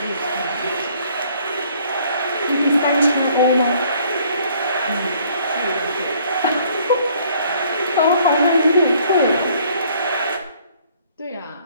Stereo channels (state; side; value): inverted; both; correlation -0.60